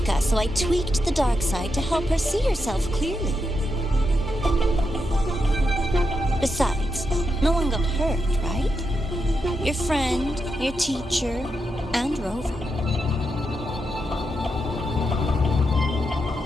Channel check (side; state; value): both; normal; correlation 0.85